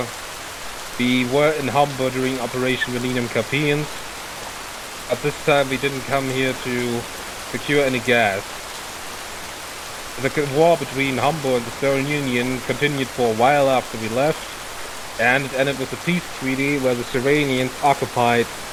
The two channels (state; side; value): identical; both; correlation 1.00